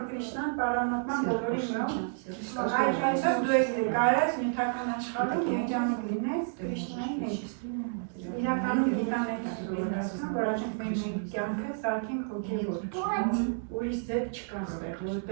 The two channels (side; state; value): left; silent; digital silence